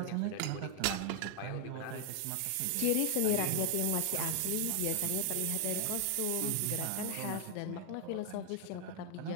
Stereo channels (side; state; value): both; different; correlation 0.00